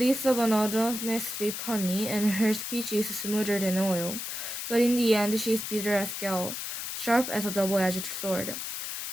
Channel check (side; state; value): left; noise; hiss, 5 dB below the sound